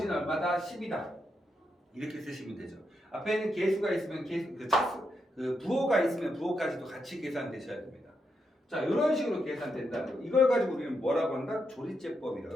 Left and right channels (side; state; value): both; normal; correlation 0.83